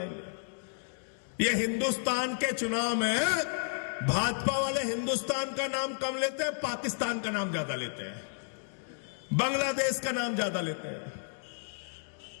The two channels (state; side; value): silent; right; digital silence